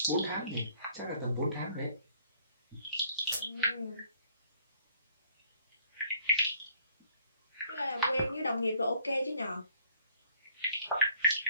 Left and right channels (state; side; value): inverted; both; correlation -0.63